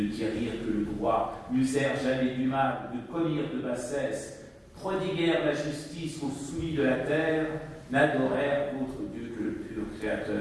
guérirent que le droit, n'usèrent jamais du mal, ne commirent de bassesse, prodiguèrent la justice aux soumis de la terre, n'adorèrent d'autre Dieu que le pur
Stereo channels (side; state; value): both; identical; correlation 1.00